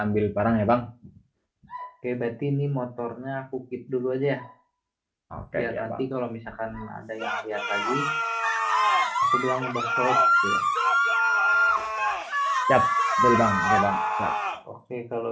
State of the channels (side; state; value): both; identical; correlation 1.00